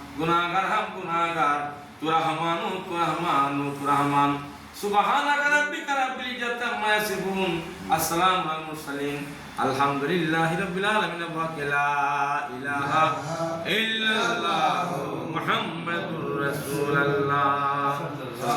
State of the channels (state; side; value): identical; both; correlation 1.00